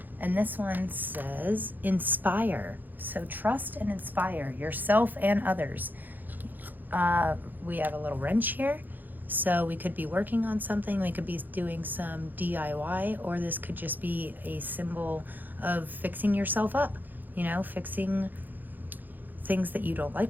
And this one says inspire. So trust and inspire yourself and others. We have a little wrench here. So we could be working on something, we could be doing some DIY, or this could just be a symbol of fixing yourself up, fixing things that you don't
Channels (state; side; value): late; left; 0.086 ms